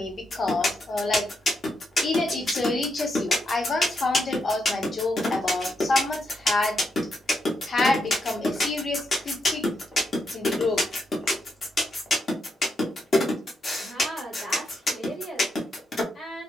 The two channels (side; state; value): both; normal; correlation 0.81